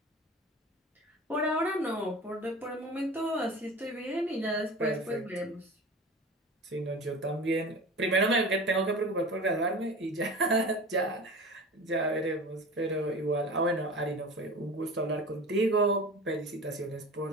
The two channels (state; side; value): normal; both; correlation 0.35